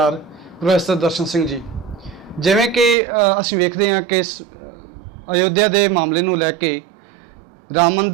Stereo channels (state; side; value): drops out; left; at 3.0 s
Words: ਪ੍ਰੋਫੈਸਰ ਦਰਸ਼ਨ ਸਿੰਘ ਜੀ। ਜਿਵੇਂ ਕਿ ਅਸੀਂ ਵੇਖਦੇ ਹਾਂ ਕਿ ਅਯੋਧਿਆ ਦੇ ਮਾਮਲੇ ਨੂੰ ਲੈ ਕੇ, ਰਾਮ